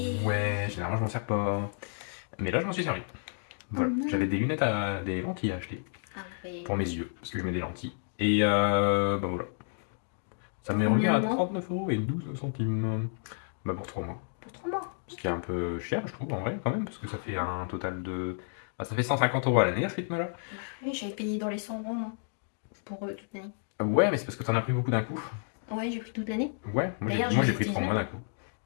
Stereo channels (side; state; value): right; silent; digital silence